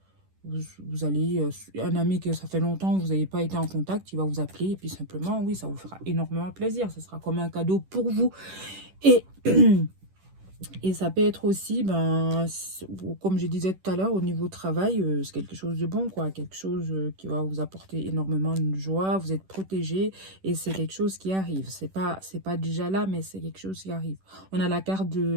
Vous allez, un ami que ça fait longtemps que vous n'avez pas été en contact, il va vous appeler et puis simplement, oui, ça vous fera énormément plaisir. Ça sera comme un cadeau pour vous. Et, et ça peut être aussi, ben, comme je disais tout à l'heure, au niveau travail, c'est quelque chose de bon, quoi. Quelque chose qui va vous apporter énormément de joie. Vous êtes protégé et c'est quelque chose qui arrive. C'est pas déjà là, mais c'est quelque chose qui arrive. On a la carte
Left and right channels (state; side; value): late; left; 10 ms